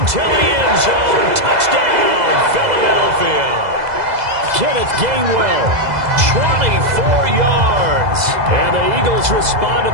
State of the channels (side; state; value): left; late; 2.0 ms